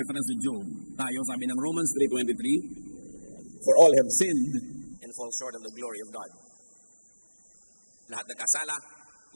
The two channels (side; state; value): both; inverted; correlation -1.00